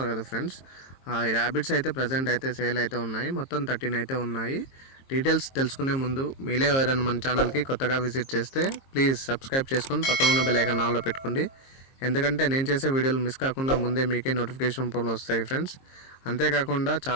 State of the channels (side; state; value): right; late; 22 ms